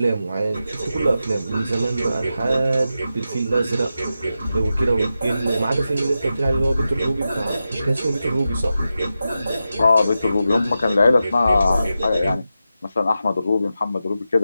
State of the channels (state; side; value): inverted; both; correlation -0.90